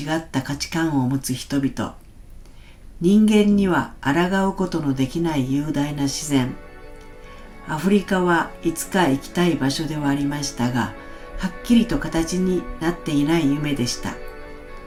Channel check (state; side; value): identical; both; correlation 1.00